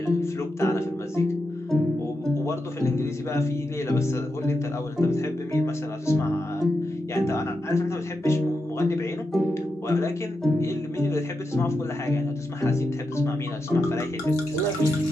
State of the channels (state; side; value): normal; both; correlation 0.87